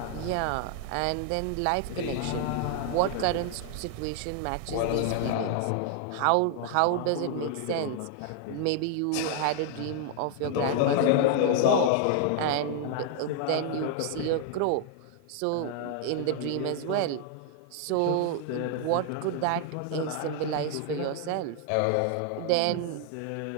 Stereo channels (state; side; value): different; both; correlation 0.00